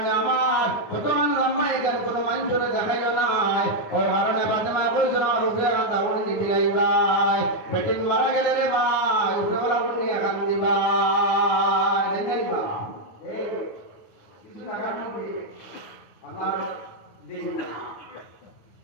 আমার কত লম্বা এখানে কোনো মানুষের দেখাইল নাই। ও কারণে বাদে কইছিল আমার উপরে কান্দা উড়ে দিতে লাইবাই, বেটিন মারা গেলে রে ভাই উপরে বলা উড়ে এখান দিবাই দেখাইবা। কিছু টাকা নেই আমার দিন না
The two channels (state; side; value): late; right; 9.5 ms